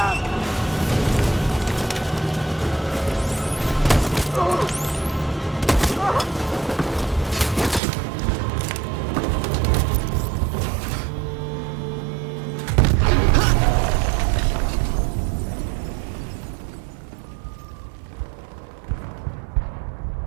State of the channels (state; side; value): drops out; left; at 7.8 s